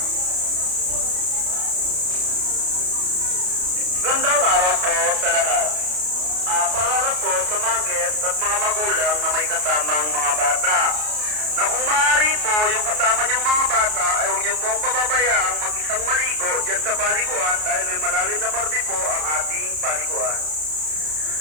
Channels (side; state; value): left; late; 33 ms